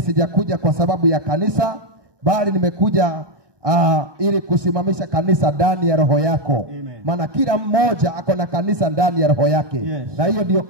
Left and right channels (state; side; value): late; left; 1.2 ms